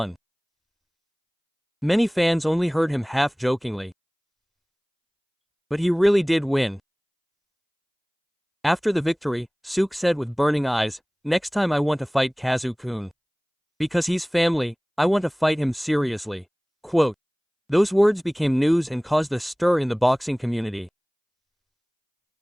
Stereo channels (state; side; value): identical; both; correlation 1.00